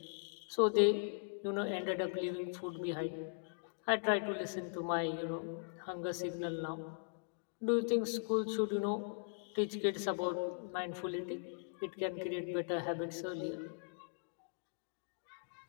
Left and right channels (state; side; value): silent; right; digital silence